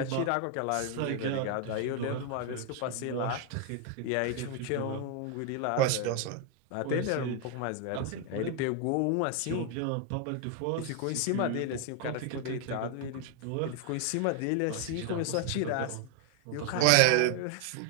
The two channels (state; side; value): different; both; correlation 0.00